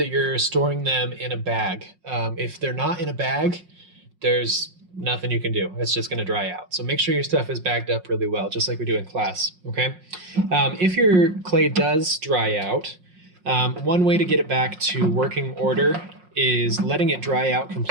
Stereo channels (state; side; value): late; left; 5.5 ms